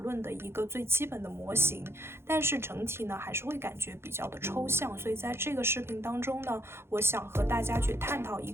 的一个最基本的模型，但是整体呢还是会感觉比较的抽象。所以在这个视频当中呢，我想和大家去探讨一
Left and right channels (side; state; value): left; late; 0.12 ms